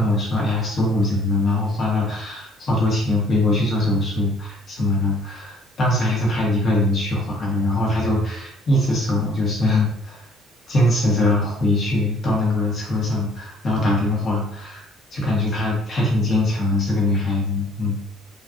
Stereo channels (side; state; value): both; normal; correlation 0.56